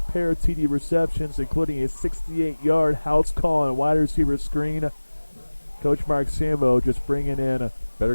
pair of TD receptions, including a 68-yard house call and wide receiver screen. Coach Mark Sambo just bringing in better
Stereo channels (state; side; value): inverted; both; correlation -1.00